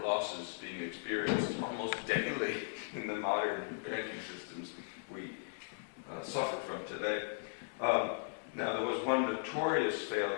being experienced almost daily in the modern banking systems we suffer from today. Now, there was one notorious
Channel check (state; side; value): silent; right; digital silence